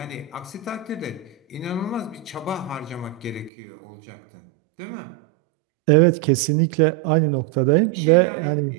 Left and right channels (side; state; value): left; drops out; at 3.5 s